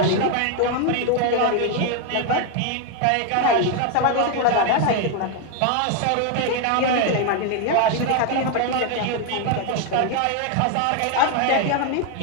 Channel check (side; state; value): both; different; correlation 0.01